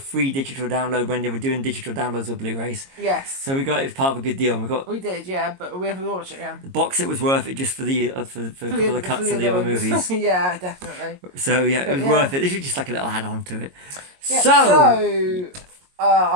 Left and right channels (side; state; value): left; late; 22 ms